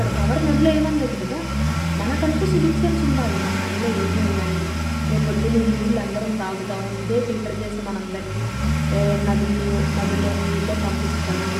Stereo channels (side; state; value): both; identical; correlation 1.00